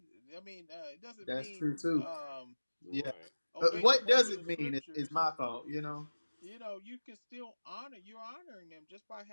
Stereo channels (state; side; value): inverted; both; correlation -1.00